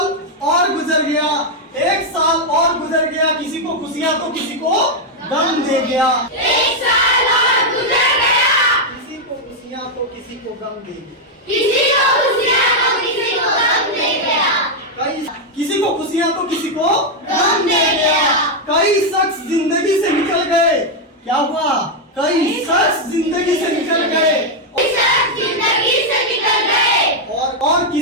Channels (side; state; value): both; normal; correlation 0.00